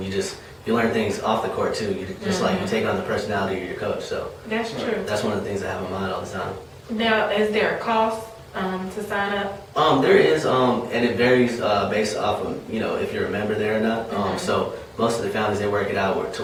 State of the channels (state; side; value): identical; both; correlation 1.00